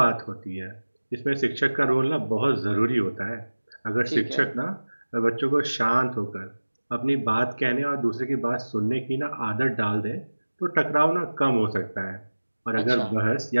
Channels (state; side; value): inverted; both; correlation -1.00